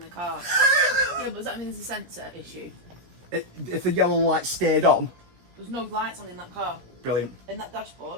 car. Yeah, but does that mean there's a sensor issue? If the yellow light stayed on? There's no lights on in that car. Brilliant. In that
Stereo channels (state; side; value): late; left; 17 ms